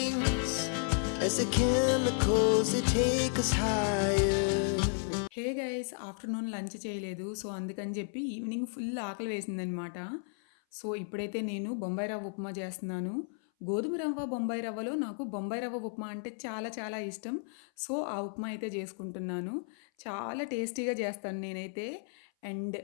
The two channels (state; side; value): silent; right; 56 dB below the other